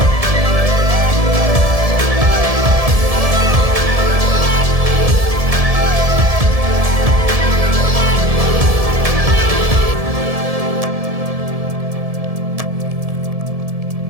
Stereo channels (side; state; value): left; late; 1.7 ms